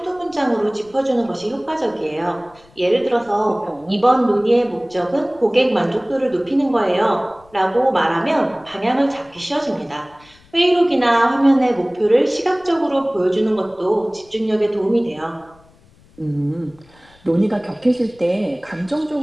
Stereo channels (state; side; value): noise; left; rumble, 29 dB below the sound